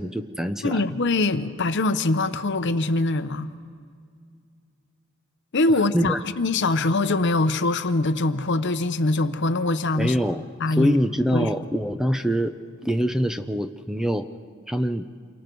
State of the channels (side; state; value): both; normal; correlation 0.59